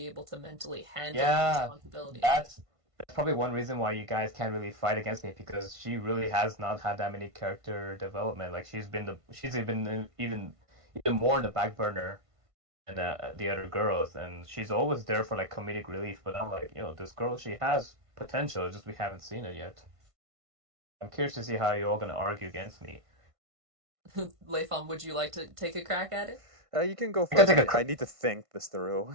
able to mentally handle the yeah. responsibility of it. That's probably one reason why you guys can't really fight against me because she really has not had that many character development. Like she's been even more in the back burner than the other girls, and she's always there for like comedic relief. But I'm like, this girl, she has potential, it's just we haven't seen it yet. I'm curious to see how you're all gonna argue against me. Leifon, would you like to take a crack at it? You can go I can first. take a I need to think this through.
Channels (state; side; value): late; left; 1.5 ms